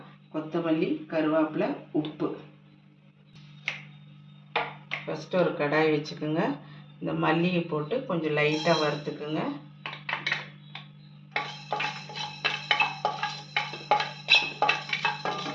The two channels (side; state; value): both; identical; correlation 1.00